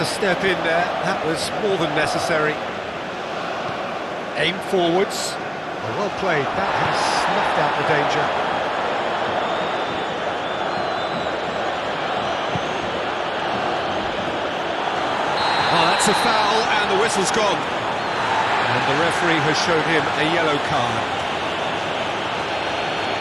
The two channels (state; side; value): identical; both; correlation 1.00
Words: step in there. That was more than necessary. Aim forwards. Oh, well played. That has snuffed out the danger. Oh, that's a foul and the whistle's gone. And the referee has shown him a yellow card.